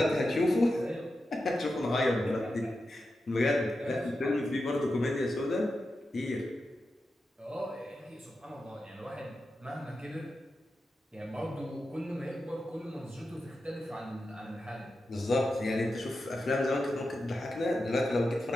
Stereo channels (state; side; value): normal; both; correlation 0.90